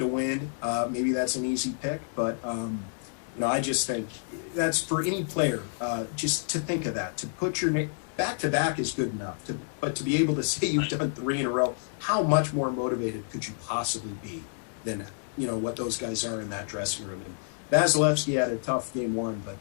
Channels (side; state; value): right; silent; digital silence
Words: win. Maybe that's an easy pick, but, I just think that's for any player, just to think of that, to put your name back-to-back is good enough. But to be able to say you've done 3 in a row, how much more motivated could you possibly be than what those guys are in that dressing room? And Vasilevsky had a tough Game 1, but